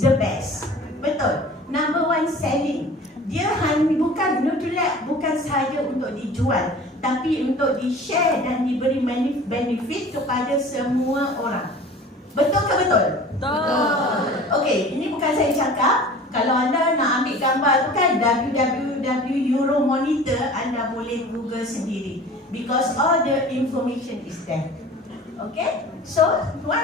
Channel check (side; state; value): both; normal; correlation 0.42